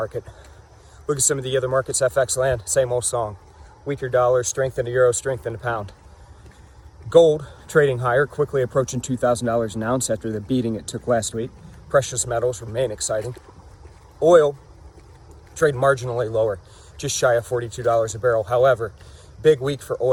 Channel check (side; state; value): both; identical; correlation 1.00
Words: Look at some of the other markets, FX land, same old song. Weaker dollar, strength in the euro, strength in the pound. Gold trading higher, quickly approaching $2,000 an ounce after the beating it took last week. Precious metals remain exciting. Oil trade marginally lower, just shy of $42 a barrel. However, big week for